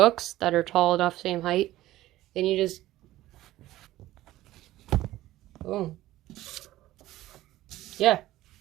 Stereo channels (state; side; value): quieter; left; 15.6 dB